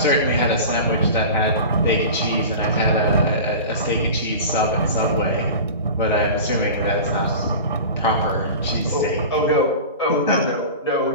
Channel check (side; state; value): both; inverted; correlation -0.33